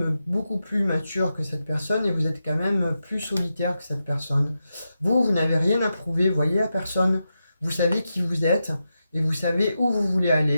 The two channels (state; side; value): inverted; both; correlation -0.88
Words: beaucoup plus mature que cette personne et vous êtes quand même plus solitaire que cette personne. Vous n'avez rien à prouver, voyez, à personne. Vous savez qui vous êtes et vous savez où vous voulez